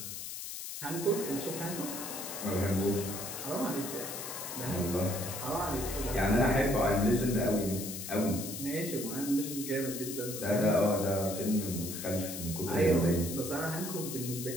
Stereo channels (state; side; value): noise; left; hiss, 7 dB below the sound